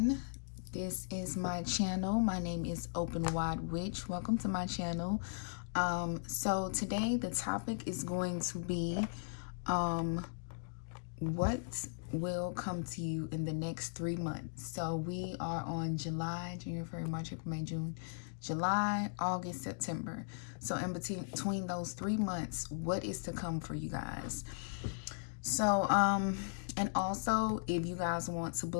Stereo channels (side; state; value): right; silent; digital silence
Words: this is my channel. My name is Openwidewitch. Welcome to my channel. So today the topic is going to be what will come to you in the next 3 months. So we are on July, January, February, March, April, May, June, July, August, September. So in between those 3 months, what is to come for you guys? So and also, if you guys want to